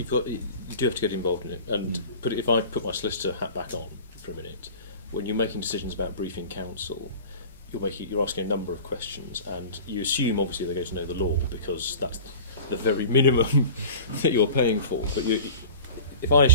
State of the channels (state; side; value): inverted; both; correlation -0.38